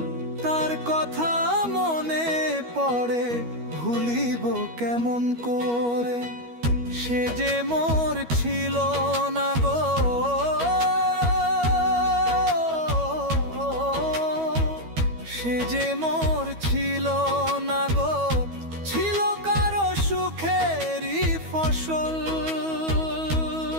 তার কথা মনে পড়ে ভুলিব কেমন করে। সে যে মোর ছিল না গো, সে যে মোর ছিল না গো, ছিল কারো সুখেরই ফসল।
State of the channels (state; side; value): late; left; 13 ms